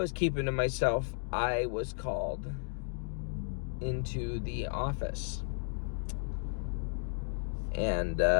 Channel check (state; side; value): silent; right; digital silence